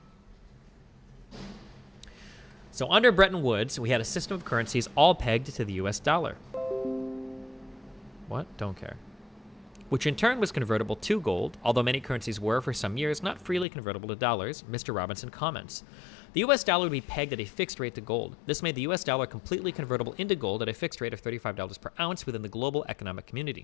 So under Bretton Woods, we had a system of currencies all pegged to the U.S. dollar. What? Don't care. Which in turn was convertible to gold, although many currencies were, for some years, not freely convertible to dollars, Mr. Robinson comments. The US dollar would be pegged at a fixed rate to gold. This made the US dollar completely convertible into gold at a fixed rate of $35 per ounce within the global economic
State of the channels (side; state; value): right; drops out; at 13.7 s